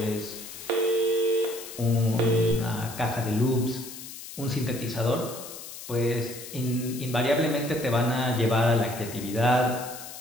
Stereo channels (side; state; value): left; noise; hiss, 12 dB below the sound